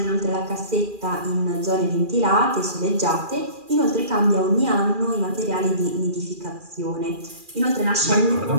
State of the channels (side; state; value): left; late; 2.4 ms